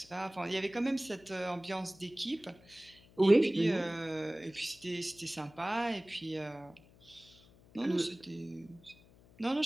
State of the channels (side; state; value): left; noise; hum, 25 dB below the sound